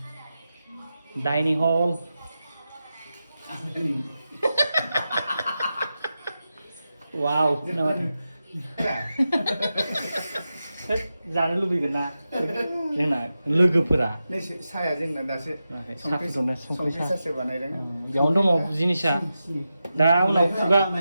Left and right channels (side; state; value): both; inverted; correlation -0.91